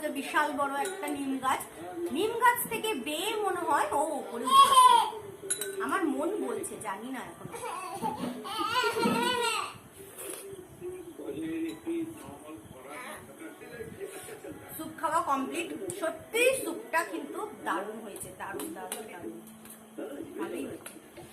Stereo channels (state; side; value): identical; both; correlation 1.00